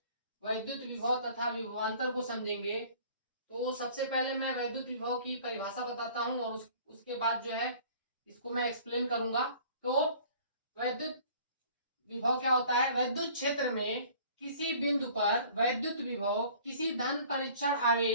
वैद्युत विभव तथा विभवांतर को समझेंगे। तो सबसे पहले मैं वैद्युत विभव की परिभाषा बताता हूं और उसके बाद जो है इसको मैं एक्सप्लेन करूंगा। तो वैद्युत विभव क्या होता है? वैद्युत क्षेत्र में किसी बिंदु पर वैद्युत विभव किसी धन परीक्षण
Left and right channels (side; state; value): both; inverted; correlation -0.50